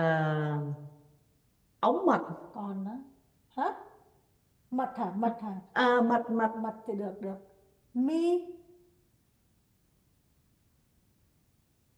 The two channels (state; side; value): identical; both; correlation 1.00